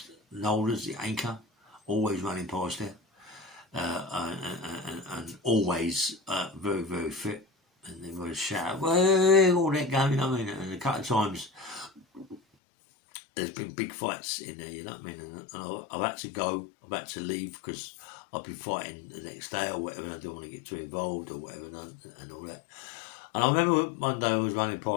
Nolders, the anchor, always running past there. And always very, very fit. And they would shout, "Way!" all that going, you know what I mean? And a couple of times there's been big fights in there, you know what I mean? And I've had to go, I've had to leave because I've been fighting the next day or whatever, and I don't want to get too involved or whatever and all that. And I remember one day I was running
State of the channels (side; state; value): right; drops out; at 12.4 s